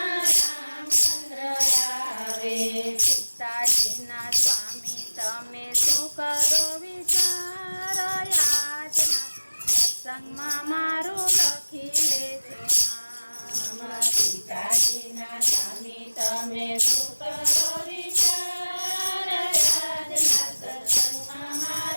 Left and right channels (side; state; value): both; inverted; correlation -1.00